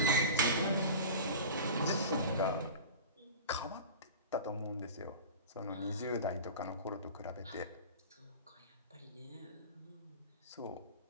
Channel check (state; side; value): inverted; both; correlation -0.33